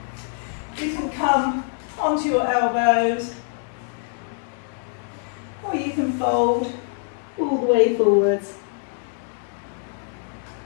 You can come onto your elbows, or you can fold all the way forwards.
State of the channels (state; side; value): silent; right; digital silence